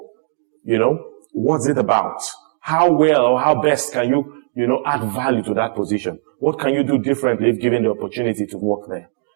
you know, what's it about? How well or how best can you, add value to that position? What can you do differently if given the opportunity to work there?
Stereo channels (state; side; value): silent; left; digital silence